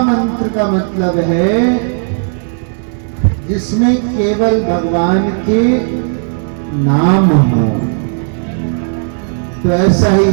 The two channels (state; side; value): silent; left; digital silence